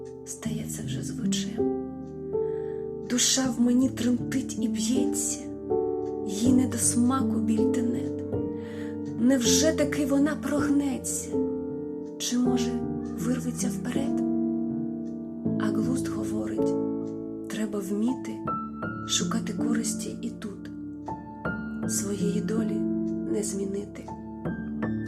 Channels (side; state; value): both; identical; correlation 1.00